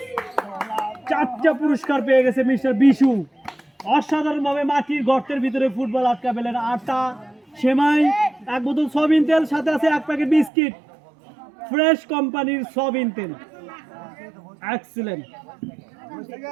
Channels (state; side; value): drops out; left; at 10.5 s